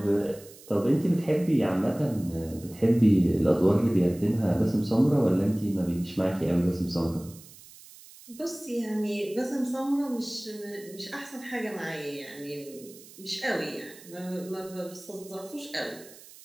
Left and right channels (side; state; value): right; noise; hiss, 20 dB below the sound